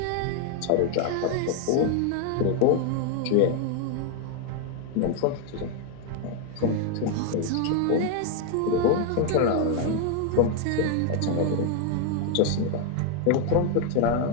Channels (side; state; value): both; different; correlation 0.01